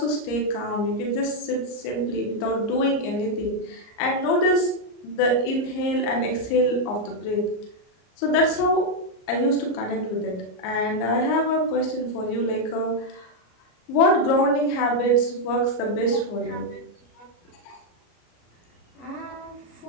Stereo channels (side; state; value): right; late; 34 ms